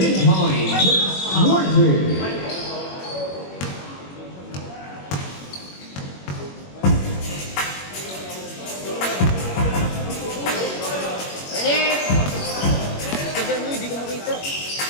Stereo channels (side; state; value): right; late; 21 ms